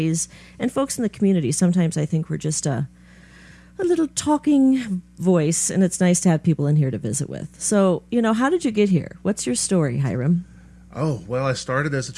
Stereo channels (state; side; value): identical; both; correlation 1.00